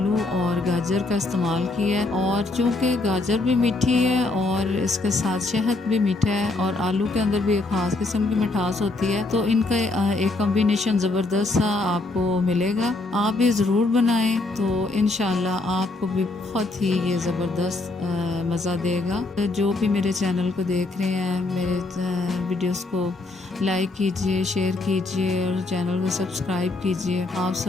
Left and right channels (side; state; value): right; quieter; 3.1 dB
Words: और गाजर का इस्तेमाल किया है। और चूँकि गाजर भी मीठी है और इसके साथ शहद भी मीठा है और आलू के अंदर भी एक ख़ास किस्म की मिठास होती है, तो इनका एक कॉम्बिनेशन ज़बरदस्त सा आपको मिलेगा। आप भी ज़रूर बनाएं तो इंशाल्लाह आपको भी बहुत ही ये ज़बरदस्त मज़ा देगा। जो भी मेरे चैनल को देख रहे हैं, मेरे वीडियोस को लाइक कीजिए, शेयर कीजिए और चैनल को सब्सक्राइब कीजिए। आप